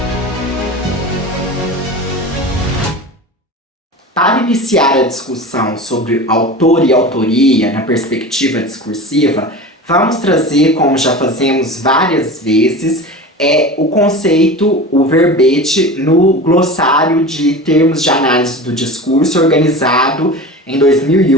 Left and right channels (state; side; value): normal; both; correlation 0.32